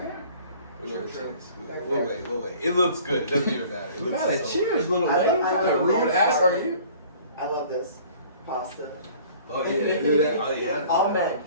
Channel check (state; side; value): inverted; both; correlation -0.50